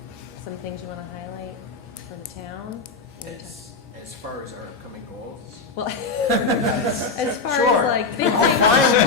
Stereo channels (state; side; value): quieter; right; 4.3 dB